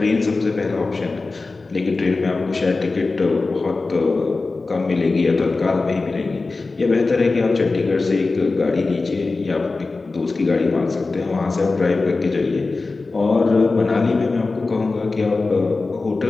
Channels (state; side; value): quieter; right; 3.7 dB